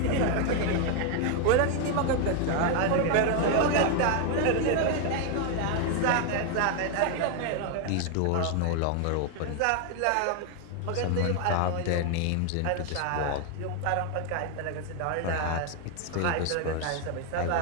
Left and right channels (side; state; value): both; different; correlation 0.00